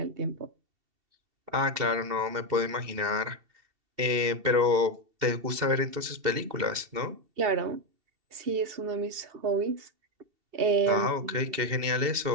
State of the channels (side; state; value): left; late; 2.7 ms